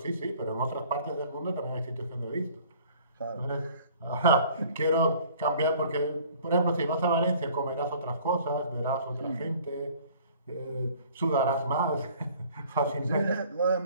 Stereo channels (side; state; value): both; inverted; correlation -0.52